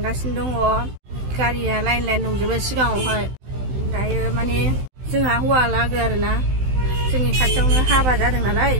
दङ गारिया लाइन दंजोबो सिगाङावहाय दायो माने जोंहा हौवा लागो आरोना जोंनि खाथियावनो हाबा जादों नालाय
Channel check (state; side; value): late; left; 16 ms